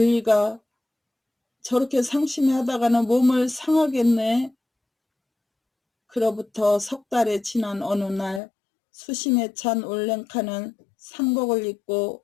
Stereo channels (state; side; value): drops out; right; at 8.4 s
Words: 저렇게 상심하다가는 몸을 상하겠네. 그로부터 석 달이 지난 어느 날 수심에 찬 올랭카는 상복을 입고